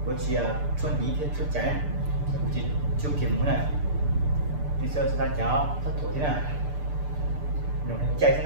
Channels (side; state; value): left; late; 6.8 ms